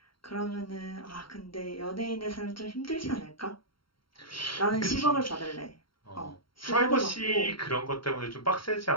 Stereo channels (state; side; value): late; right; 0.73 ms